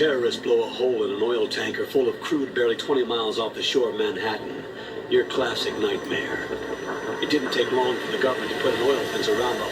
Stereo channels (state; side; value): identical; both; correlation 1.00